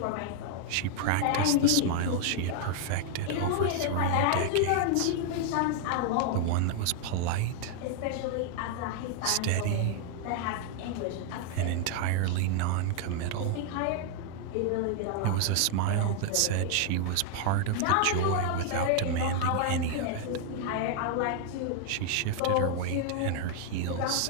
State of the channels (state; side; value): different; both; correlation 0.00